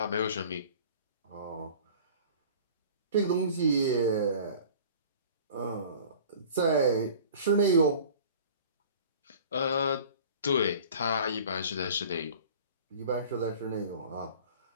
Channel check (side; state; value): both; inverted; correlation -0.44